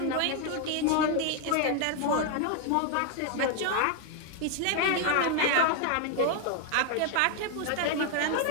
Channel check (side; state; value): both; different; correlation 0.01